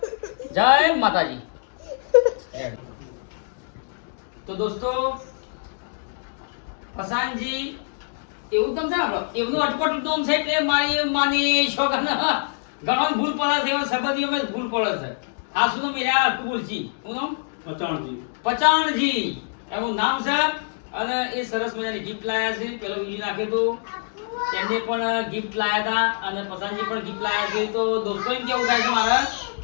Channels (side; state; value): right; silent; digital silence